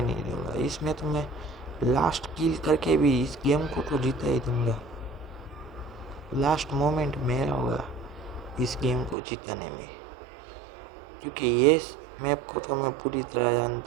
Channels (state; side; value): drops out; left; at 9.2 s